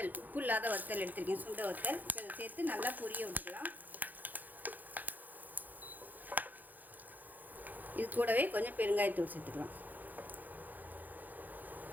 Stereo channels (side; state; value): left; late; 0.084 ms